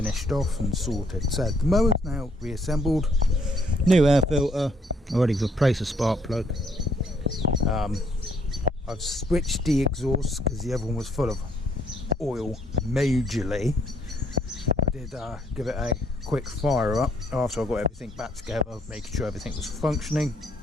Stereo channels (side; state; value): both; normal; correlation 0.68